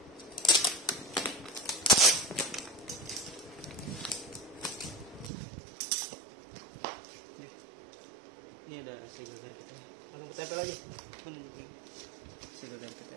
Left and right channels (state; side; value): drops out; left; at 5.3 s